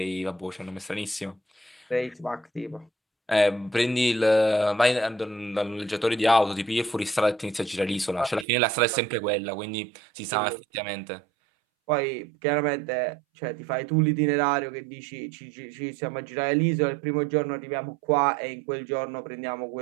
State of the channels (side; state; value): left; drops out; at 8.5 s